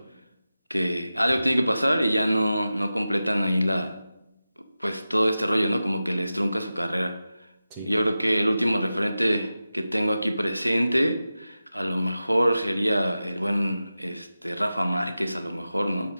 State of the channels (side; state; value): both; inverted; correlation -0.94